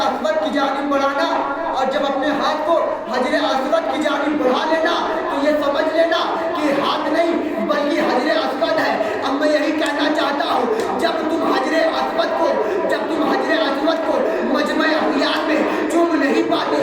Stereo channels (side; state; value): both; identical; correlation 1.00